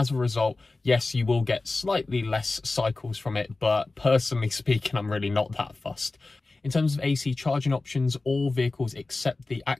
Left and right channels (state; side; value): quieter; right; 3.4 dB